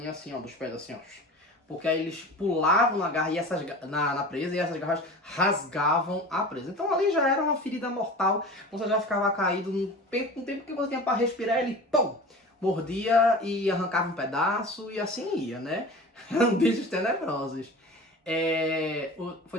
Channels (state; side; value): normal; both; correlation 0.36